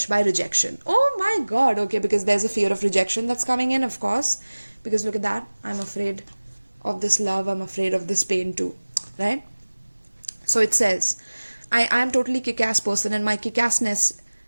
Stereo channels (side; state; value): both; inverted; correlation -1.00